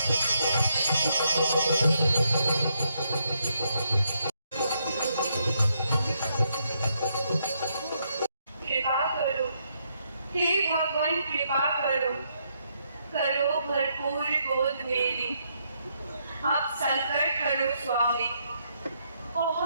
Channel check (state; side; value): inverted; both; correlation -0.77